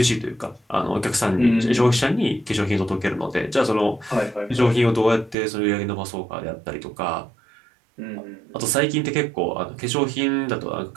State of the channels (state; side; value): drops out; left; at 5.4 s